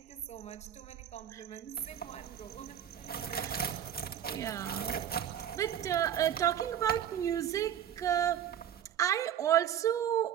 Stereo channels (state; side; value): quieter; left; 9.9 dB